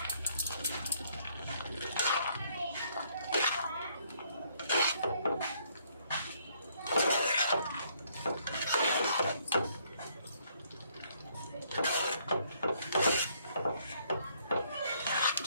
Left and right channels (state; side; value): inverted; both; correlation -0.68